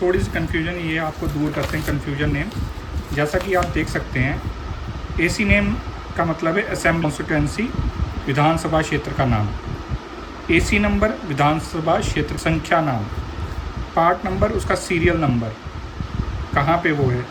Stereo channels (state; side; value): identical; both; correlation 1.00